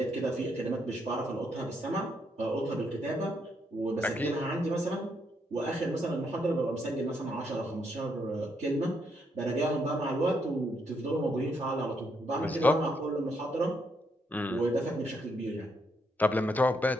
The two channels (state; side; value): normal; both; correlation 0.76